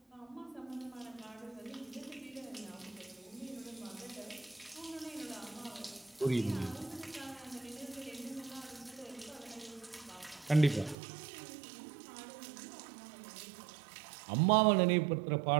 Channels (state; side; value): drops out; left; at 11.0 s